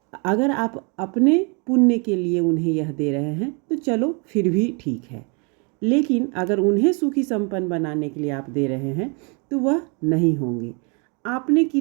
अगर आप अपने पुण्य के लिए उन्हें यह दे रहे हैं तो चलो फिर भी ठीक है, लेकिन अगर उन्हें सुखी संपन्न बनाने के लिए आप दे रहे हैं तो वह नहीं होंगे। आपने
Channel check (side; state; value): left; quieter; 34.3 dB